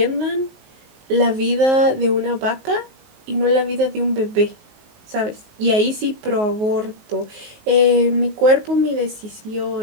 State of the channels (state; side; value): late; left; 19 ms